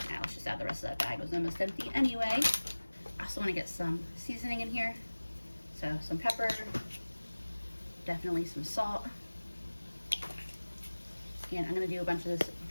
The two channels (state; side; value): inverted; both; correlation -1.00